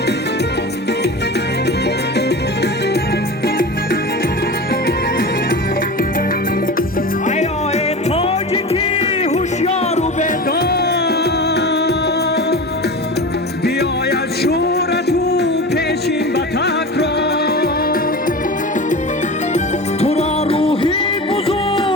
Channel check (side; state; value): both; normal; correlation 0.30